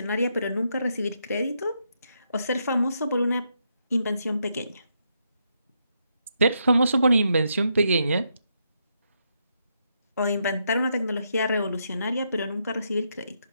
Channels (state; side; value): inverted; both; correlation -0.79